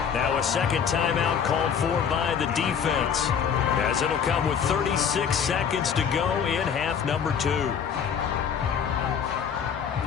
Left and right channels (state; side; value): quieter; right; 7.4 dB